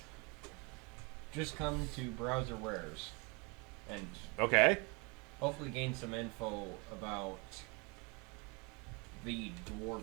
Just come to Browser Wares and Okay. hopefully gain some info about the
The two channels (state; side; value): quieter; left; 29.9 dB